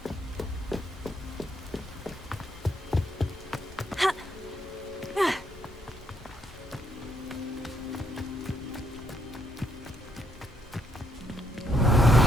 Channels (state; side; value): normal; both; correlation 0.74